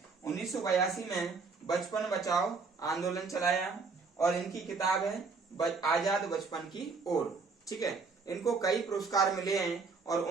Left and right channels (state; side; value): quieter; left; 4.5 dB